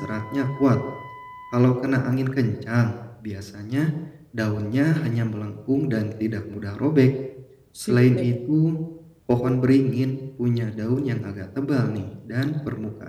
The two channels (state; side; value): identical; both; correlation 1.00